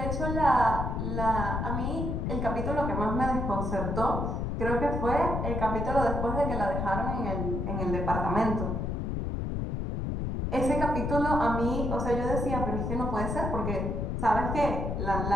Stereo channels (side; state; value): left; noise; rumble, 1 dB below the sound